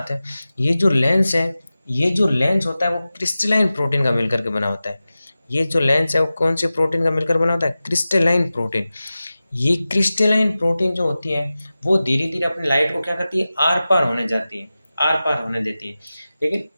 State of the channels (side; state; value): both; inverted; correlation -0.95